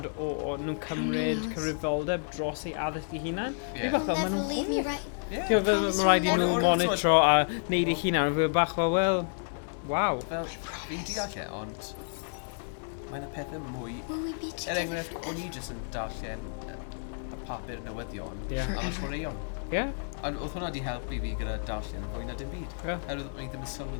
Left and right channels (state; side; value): silent; right; digital silence